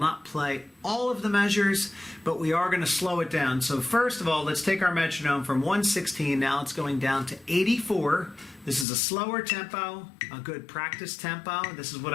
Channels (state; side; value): drops out; right; at 8.8 s